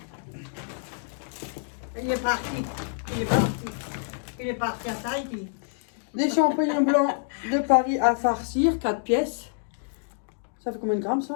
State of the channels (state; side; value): silent; right; digital silence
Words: Il est parti. Il est parti. Il est parti à Tahiti. Des champignons blancs de Paris à farcir, 4 pièces. Ça fait combien de grammes,